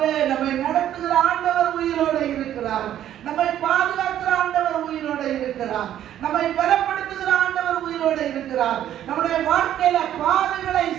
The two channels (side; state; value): left; quieter; 11.4 dB